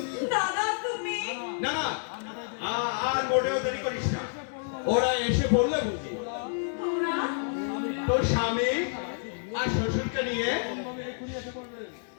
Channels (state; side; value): silent; right; 59 dB below the other